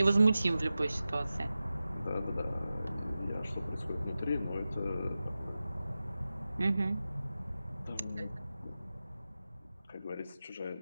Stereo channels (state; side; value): inverted; both; correlation -0.94